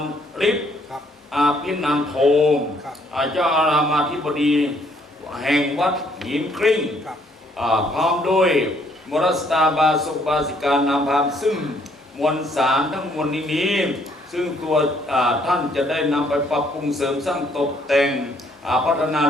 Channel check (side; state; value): both; normal; correlation 0.66